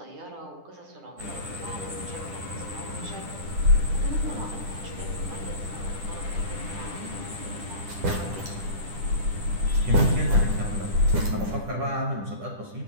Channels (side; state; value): left; late; 10 ms